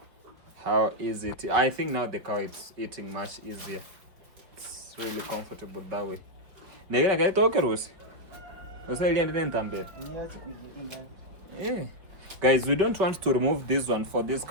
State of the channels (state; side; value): late; left; 5.3 ms